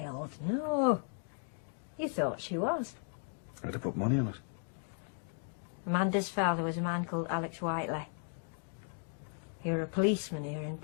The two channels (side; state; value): right; silent; 54 dB below the other